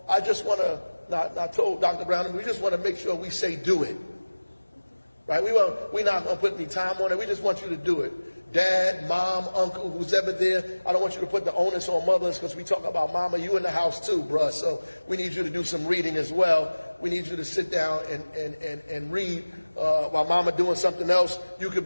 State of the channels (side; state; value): both; inverted; correlation -1.00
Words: I just want to, not told Dr. Brown, we just want to make sure we say do it. Right? We're not going to put any time on it. We just want you to do it. Dad, mom, uncle, who's ever there. I don't want you to put the onus on mothers, because we talk about mama. You in the house too, bruh. So we need you to do some reading as well. We need you to sit down and read while mama doing something else. You could